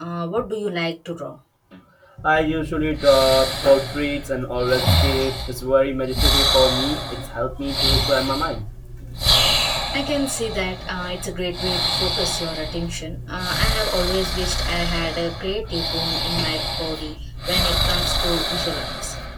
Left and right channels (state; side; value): identical; both; correlation 1.00